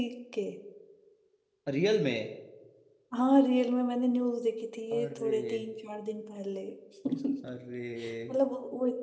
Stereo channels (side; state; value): both; identical; correlation 1.00